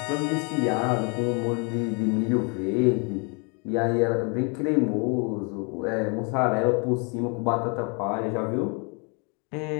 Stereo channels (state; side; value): quieter; right; 34.2 dB